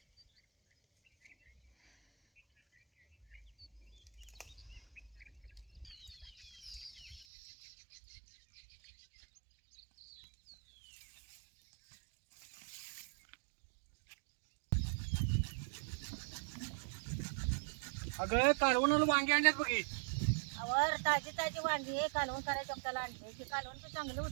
अगं कालवणाला वांगी आणल्यात बघी. वर ताजी ताजी वांगी कालवण करायचं आपल्याला आणले की कालवण तर चांगलं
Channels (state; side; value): drops out; left; at 7.2 s